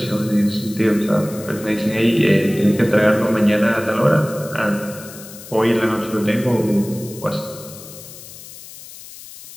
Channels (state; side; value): noise; left; hiss, 16 dB below the sound